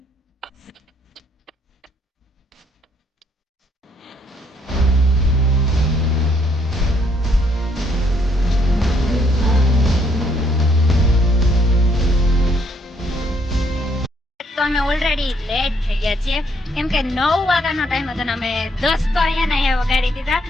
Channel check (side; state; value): both; normal; correlation 0.69